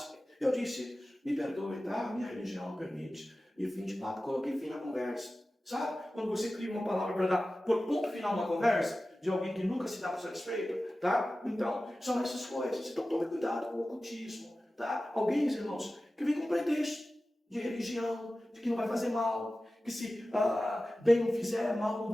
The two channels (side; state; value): both; normal; correlation 0.95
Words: Eu disse, me perdoe, tá? Minha religião não permite. E fim de papo, coloquei fim na conversa. Sabe? Quando você cria uma palavra para dar por ponto final uma conversa, de alguém que nunca se dá por satisfeito, tá? Então, são essas coisas. Então, tome cuidado com o ocultismo, tá? Alguém, irmãos, que vem com pretexto de religião, de que não vai fazer mal, que se bem não fizer, mal não